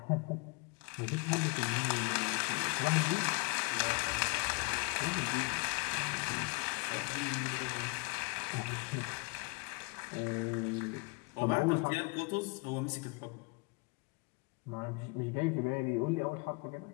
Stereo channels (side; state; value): right; quieter; 30.7 dB